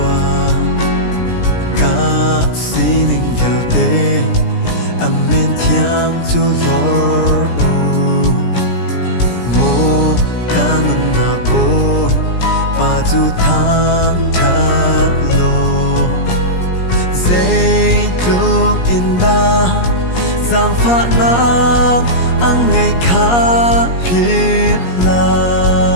cả xí ninh vào tê âm men thiang dù lor mô ca nung nạc bồn bà dù tháng thật lô dây lúc in đa giang phát nam ang ngày khá biết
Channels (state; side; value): late; right; 17 ms